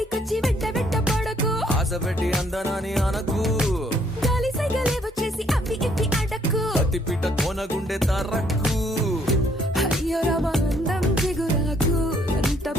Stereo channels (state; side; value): normal; both; correlation 0.66